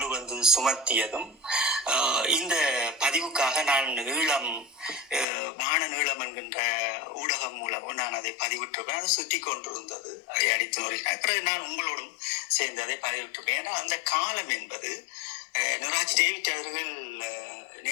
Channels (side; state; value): right; drops out; at 5.2 s